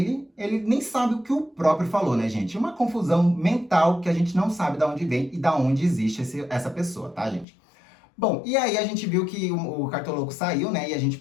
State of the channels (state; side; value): drops out; right; at 7.5 s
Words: nem sabe o que o próprio falou, né, gente? Uma confusão mental que a gente não sabe de onde vem e de onde existe essa pessoa, tá, gente? Bom, e aí a gente viu que o Cartoloco saiu, né? E a gente